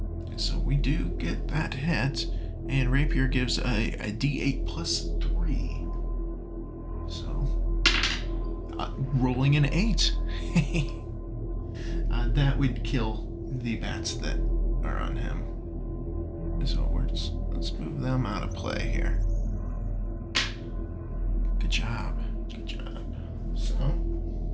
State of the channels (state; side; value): identical; both; correlation 1.00